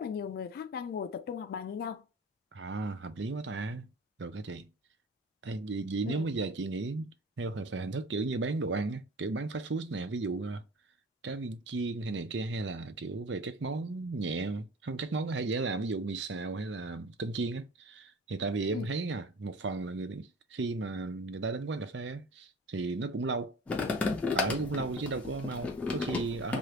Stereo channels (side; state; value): both; normal; correlation 0.41